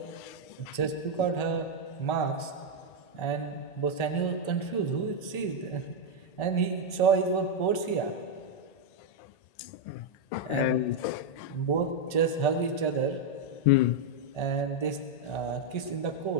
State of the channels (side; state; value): right; late; 1.4 ms